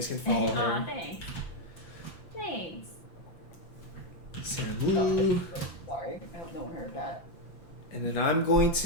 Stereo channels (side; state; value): right; late; 5.9 ms